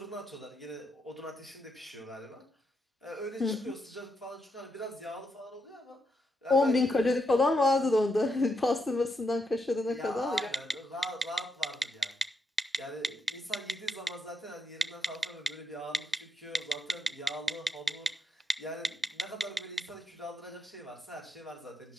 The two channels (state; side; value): normal; both; correlation 0.81